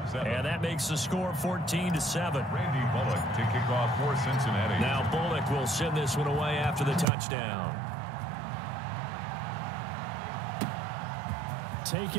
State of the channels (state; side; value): drops out; left; at 7.1 s